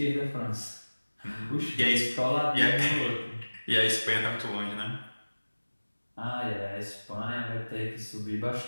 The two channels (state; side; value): inverted; both; correlation -1.00